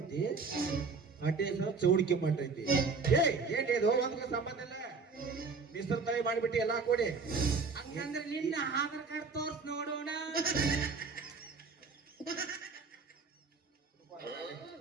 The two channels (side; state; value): left; quieter; 4.6 dB